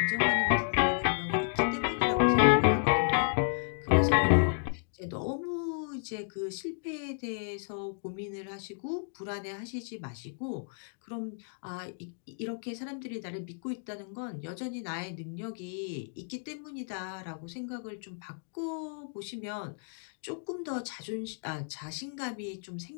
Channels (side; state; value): right; silent; digital silence